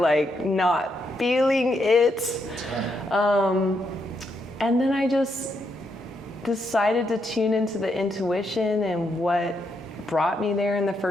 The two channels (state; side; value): normal; both; correlation 0.79